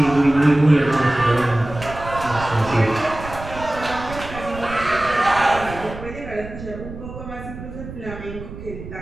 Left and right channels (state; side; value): noise; right; rumble, 12 dB below the sound